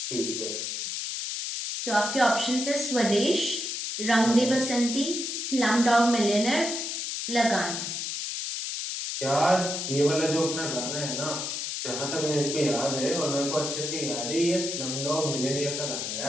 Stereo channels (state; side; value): noise; left; hiss, 4 dB below the sound